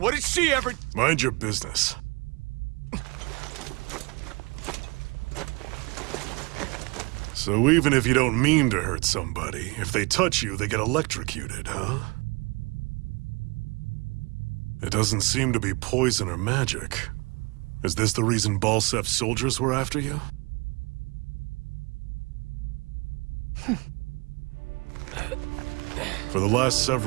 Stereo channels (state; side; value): quieter; left; 27.8 dB